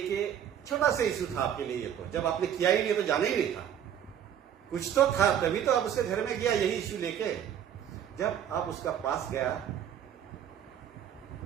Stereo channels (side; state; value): left; quieter; 9.6 dB